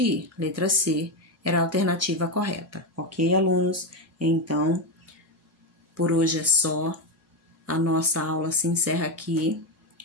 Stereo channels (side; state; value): both; normal; correlation 0.10